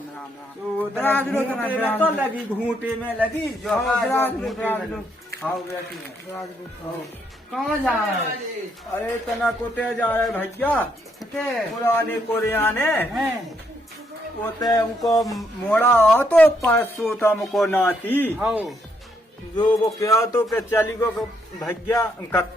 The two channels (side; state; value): both; normal; correlation 0.74